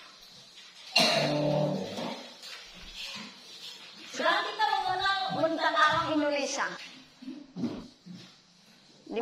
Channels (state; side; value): identical; both; correlation 1.00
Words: Sekarang kita mengenal bentang alam Indonesia. Di